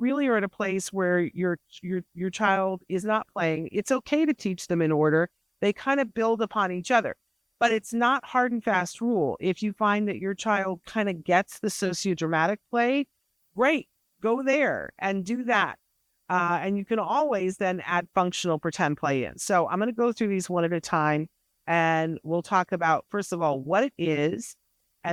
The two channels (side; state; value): both; identical; correlation 1.00